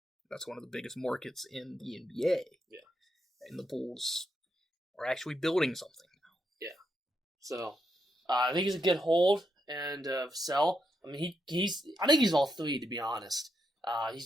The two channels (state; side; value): normal; both; correlation 0.81